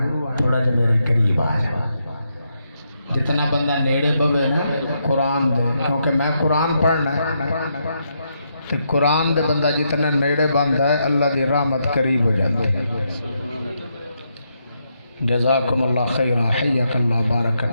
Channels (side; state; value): both; inverted; correlation -0.80